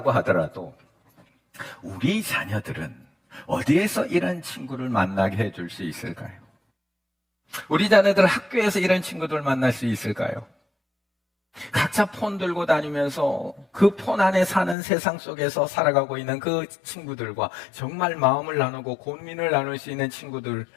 하더라도 우리 자녀들은 어디에서 이런 친구를 만나게 해줄 수 있을까요? 우리 자녀들 학교에서 이런 친구들 만날 수 있을까요? 각자 폰 들고 다니면서 그 폰 안에 사는 세상 속에서 살아가고 있는 그 친구들과 정말 마음을 나누고 고민을 나눌 수 있는 친구들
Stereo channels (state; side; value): drops out; right; at 14.8 s